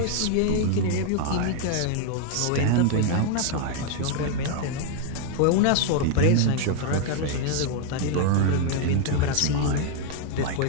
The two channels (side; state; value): both; different; correlation 0.00